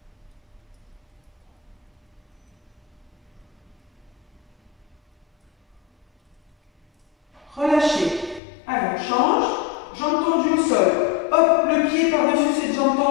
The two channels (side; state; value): right; drops out; at 8.4 s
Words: relâchez. Allez, on change. Jambe tendue au sol. Hop, le pied par-dessus cette jambe